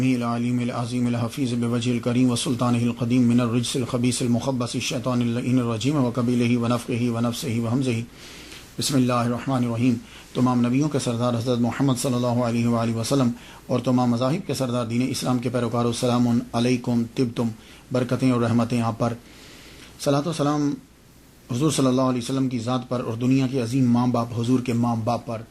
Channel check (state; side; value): identical; both; correlation 1.00